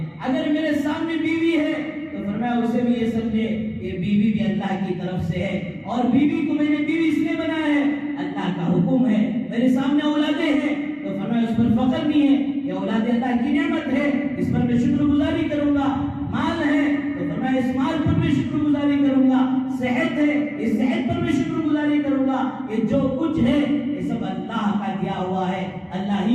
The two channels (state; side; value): identical; both; correlation 1.00